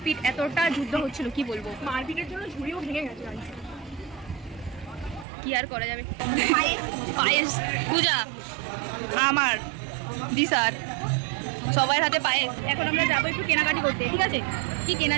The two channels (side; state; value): left; drops out; at 5.2 s